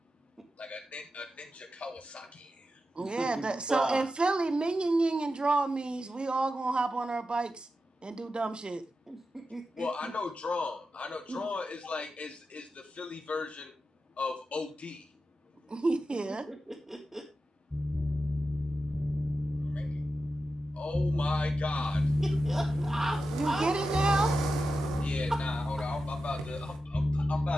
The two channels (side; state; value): both; normal; correlation 0.91